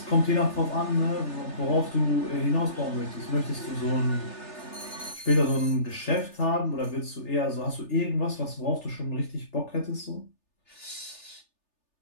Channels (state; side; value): late; right; 3.3 ms